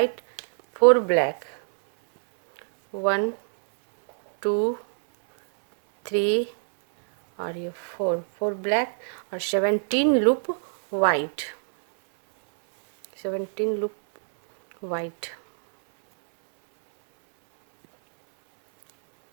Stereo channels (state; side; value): silent; left; 63 dB below the other